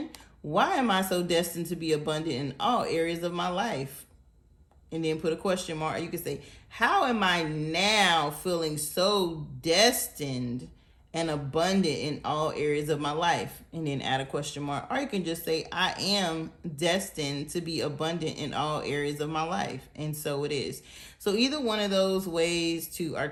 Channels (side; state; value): both; identical; correlation 1.00